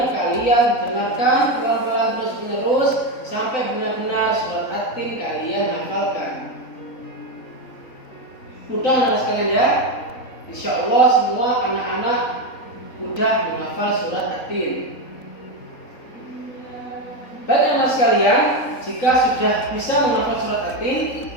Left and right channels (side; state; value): right; late; 3.9 ms